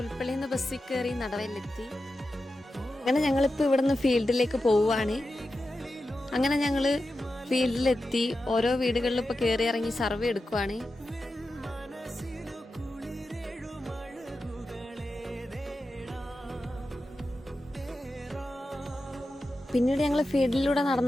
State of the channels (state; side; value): normal; both; correlation 0.91